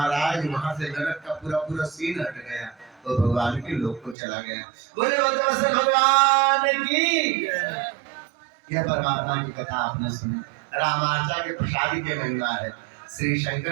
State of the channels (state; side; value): drops out; left; at 4.2 s